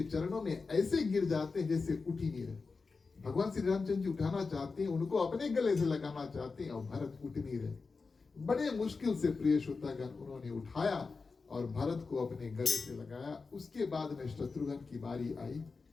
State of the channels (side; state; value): right; quieter; 4.4 dB